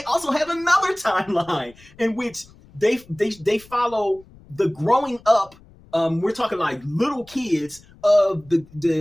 also have another timeline in which they follow the growing up. We're talking like little kids of the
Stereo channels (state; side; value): noise; left; rumble, 25 dB below the sound